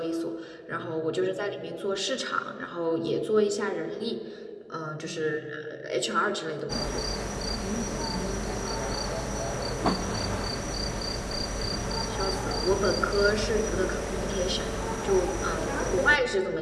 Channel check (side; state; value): both; identical; correlation 1.00